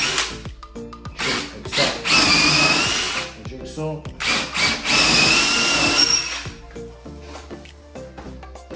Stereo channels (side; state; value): both; identical; correlation 1.00